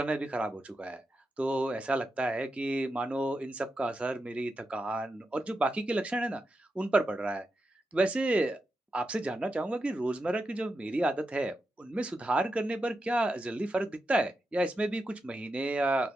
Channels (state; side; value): normal; both; correlation 0.88